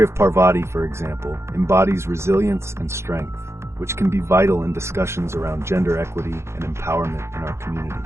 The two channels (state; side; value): late; left; 0.13 ms